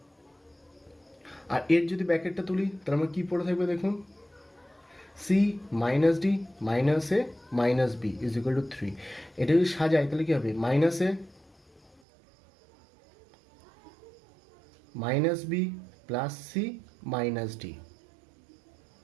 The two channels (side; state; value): left; drops out; at 12.0 s